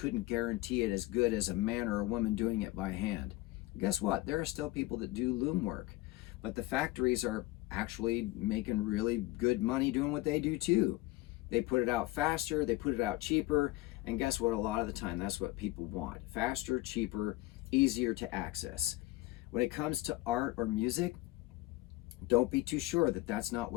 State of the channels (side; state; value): right; quieter; 18.5 dB